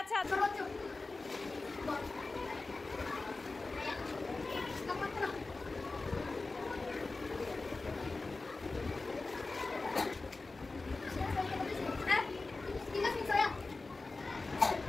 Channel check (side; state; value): right; quieter; 3.5 dB